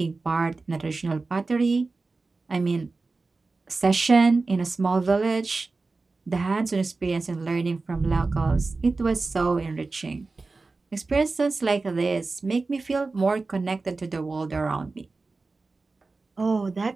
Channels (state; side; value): quieter; left; 3.8 dB